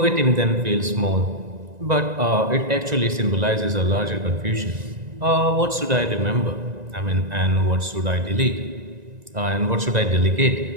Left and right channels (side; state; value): left; late; 1.9 ms